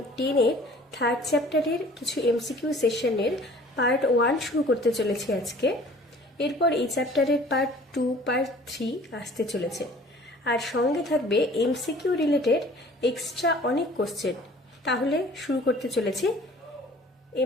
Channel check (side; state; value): both; normal; correlation 0.50